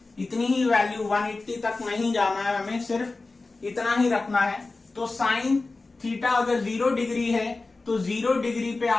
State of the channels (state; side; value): quieter; right; 3.5 dB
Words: इतनी ही वैल्यू 180 तक नहीं जाना है, हमें सिर्फ इतना ही रखना है। तो साइन थीटा अगर 0 डिग्री है तो 0 डिग्री पे